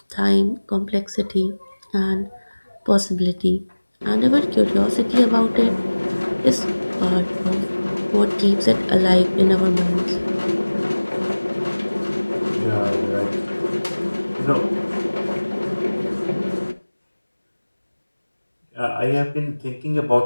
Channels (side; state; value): both; inverted; correlation -1.00